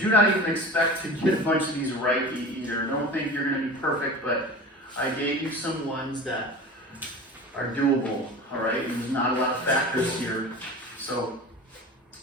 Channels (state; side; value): normal; both; correlation 0.35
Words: not even expect to get a bunch of these right either. Don't think you're gonna be perfect, but I gave you some ones that are doable, all right? And there's not a lot of factors here. So